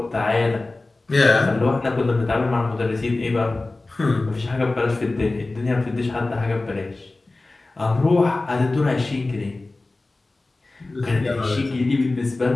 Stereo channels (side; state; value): right; quieter; 3.2 dB